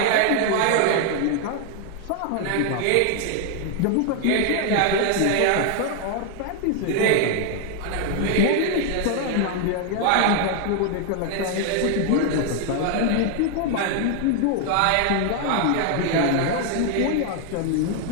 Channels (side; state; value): both; different; correlation 0.00